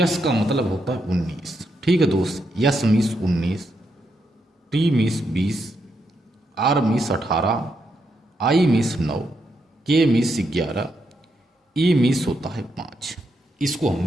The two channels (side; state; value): both; normal; correlation 0.81